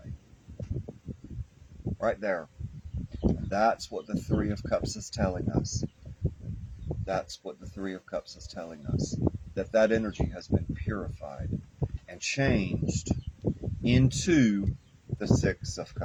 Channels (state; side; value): identical; both; correlation 1.00